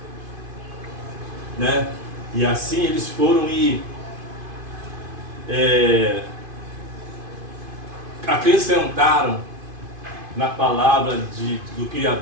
né? E assim eles foram e acrescentaram na palavra do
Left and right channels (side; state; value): left; late; 2.5 ms